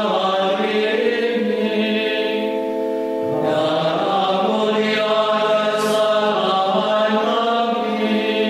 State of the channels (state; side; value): identical; both; correlation 1.00